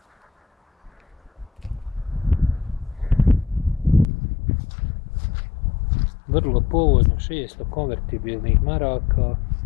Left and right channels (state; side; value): drops out; right; at 4.0 s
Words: Vrlo povoljno, 600 konvertibilnih maraka.